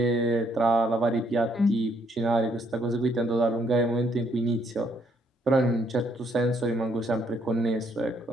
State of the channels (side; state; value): both; normal; correlation 0.70